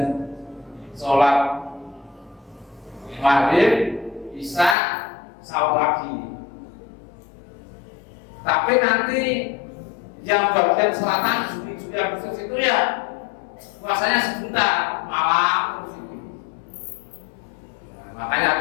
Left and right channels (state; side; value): drops out; right; at 4.8 s